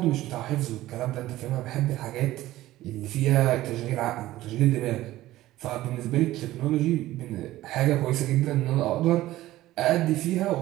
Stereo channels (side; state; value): left; quieter; 15.8 dB